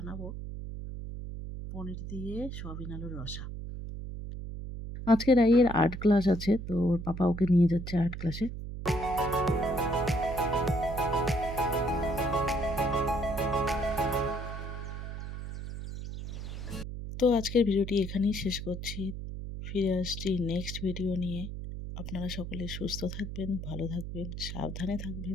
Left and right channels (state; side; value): noise; right; hum, 7 dB below the sound